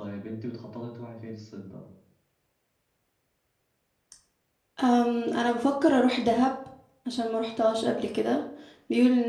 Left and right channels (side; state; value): both; identical; correlation 1.00